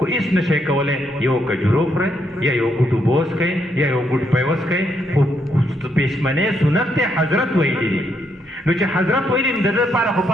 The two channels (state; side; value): normal; both; correlation 0.76